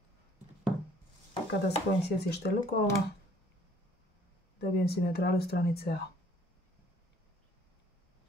Kada spojim sjecište lukova, dobijem simetralu stranice A.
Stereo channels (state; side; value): normal; both; correlation 0.58